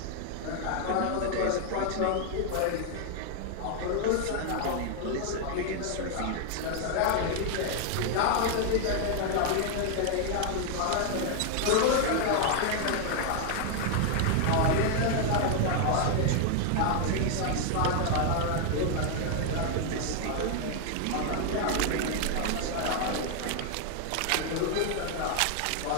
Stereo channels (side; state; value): both; different; correlation 0.00